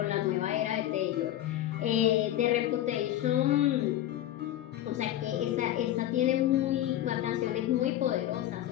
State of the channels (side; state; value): right; quieter; 12.9 dB